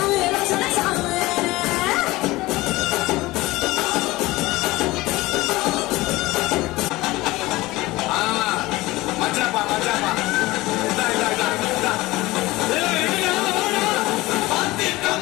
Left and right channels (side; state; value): right; quieter; 19.6 dB